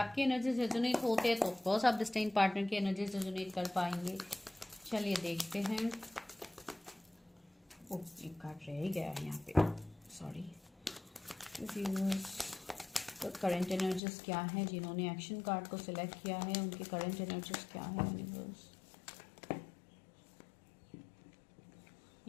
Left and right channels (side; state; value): right; drops out; at 14.0 s